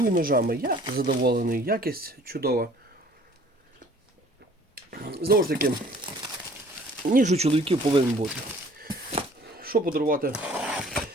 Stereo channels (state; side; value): normal; both; correlation 0.53